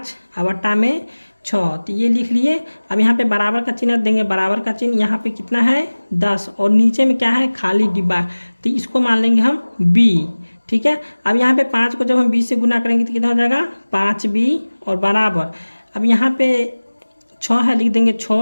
और बट्टा में 6, तो ये लिख लिए। अब यहाँ पे बराबर का चिन्ह देंगे, बराबर का चिन्ह यहाँ पे कितना है 10 और नीचे में क्या है खाली डिब्बा, तो इसको मान लेंगे हम b। ठीक है। अब यहाँ पे 5 को जब हम 20 से गुना करेंगे तो कितना हो जाएगा 5b और बराबर अब यहाँ पे 6 है, लिख देंगे 6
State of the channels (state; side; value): inverted; both; correlation -1.00